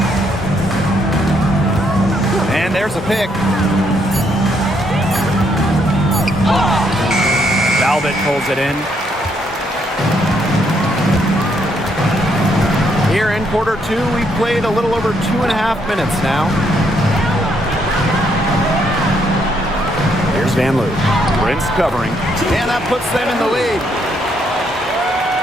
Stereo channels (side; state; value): both; normal; correlation 0.73